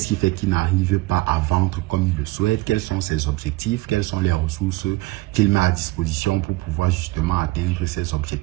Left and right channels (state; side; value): quieter; left; 20.3 dB